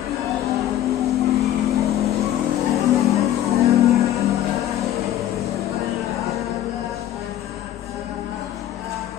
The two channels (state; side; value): quieter; right; 12.1 dB